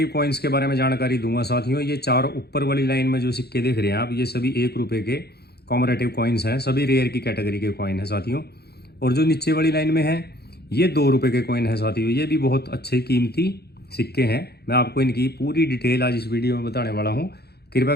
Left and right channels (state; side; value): late; right; 0.47 ms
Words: कॉइन्स के बारे में जानकारी दूंगा। साथियों, ये चार ऊपर वाली लाइन में जो सिक्के देख रहे हैं आप, ये सभी 1 रुपये के कॉमरेटिव कॉइन्स हैं, सभी रेयर की कैटेगरी के कॉइन है साथियों। और जो नीचे वाली लाइन में है ये 2 रुपये के कॉइन है साथियों। ये भी बहुत अच्छे कीमती सिक्के हैं। मैं आपको इनकी पूरी डिटेल आज इस वीडियो में बताने वाला हूँ। कृपया